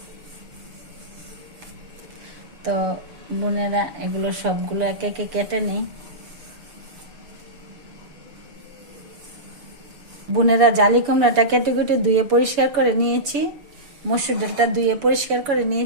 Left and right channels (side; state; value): left; late; 6.9 ms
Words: তো বোনেরা, এগুলো সবগুলো একে একে কেটে নেই। বোনেরা, জালি কুমড়াটা কেটে কেটে ধুয়ে পরিষ্কার করে নিয়েছি, মসুর ডালটা ধুয়ে পরিষ্কার করে